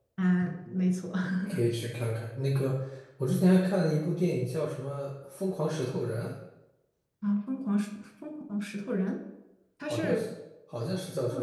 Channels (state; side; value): identical; both; correlation 1.00